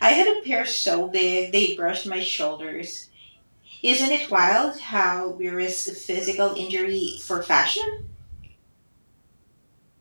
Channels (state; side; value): inverted; both; correlation -1.00